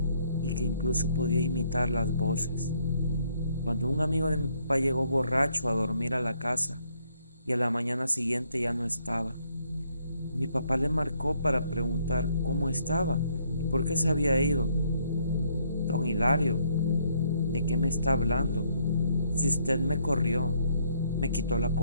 y que incluso podía imitar las voces. Cuando un amigo de mi papá llegó borracho a dormir a la casa y a la mañana siguiente ya no estaba, mi papá le marcó para preguntar cómo estaba y por qué se había ido. Don Hilario, ¿de qué me está hablando? Si usted me corrió, me quitó la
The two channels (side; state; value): both; inverted; correlation -0.70